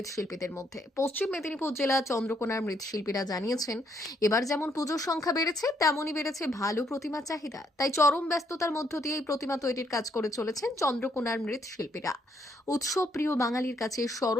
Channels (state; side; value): normal; both; correlation 0.71